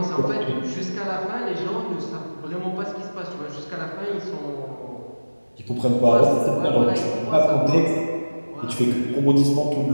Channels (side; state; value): both; inverted; correlation -1.00